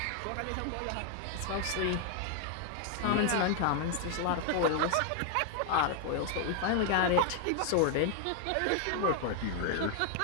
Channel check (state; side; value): different; both; correlation 0.00